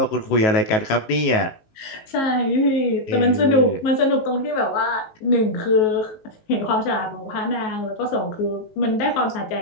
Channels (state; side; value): late; right; 19 ms